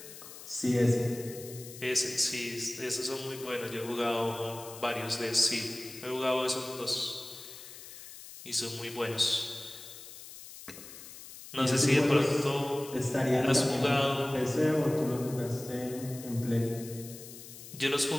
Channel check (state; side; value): noise; left; hiss, 15 dB below the sound